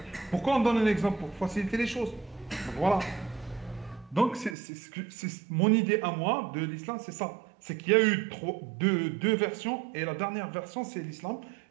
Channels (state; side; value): drops out; left; at 4.5 s